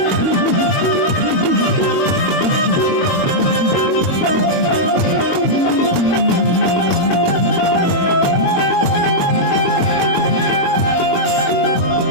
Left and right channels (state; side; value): late; right; 22 ms